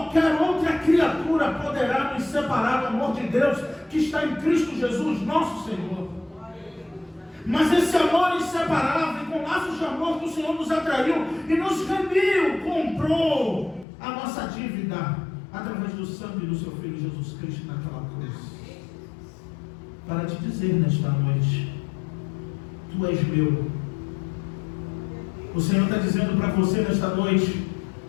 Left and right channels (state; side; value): drops out; right; at 13.9 s